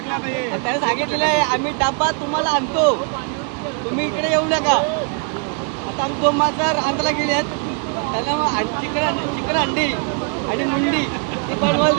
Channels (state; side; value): quieter; left; 39.5 dB